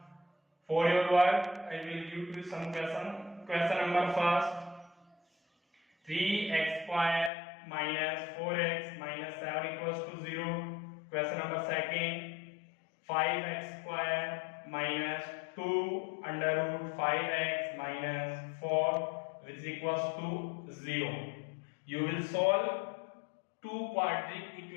for your work, I will give you some question. Question number first: 3x square minus 4x minus 7 equals to 0. Question number second: 5x square minus 2 under root 5x minus 4 which is equals to 0. You will solve two quadratic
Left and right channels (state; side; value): drops out; right; at 7.3 s